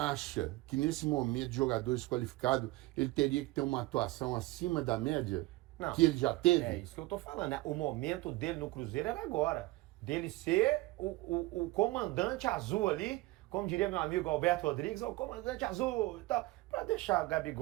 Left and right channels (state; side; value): quieter; left; 19.9 dB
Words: que nesse momento de jogadores qualificados, ele teria que ter uma atuação acima da média? Não, que ele já teve? É isso que eu tô falando, né? O momento dele no Cruzeiro era agora. Dele ser o comandante azul ali, como diria meu amigo Alberto Rodrigues, o comandante azul e tal, pra deixar o